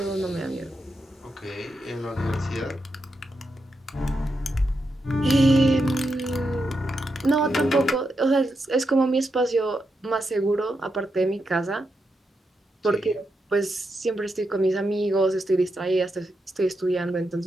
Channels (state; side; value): normal; both; correlation 0.85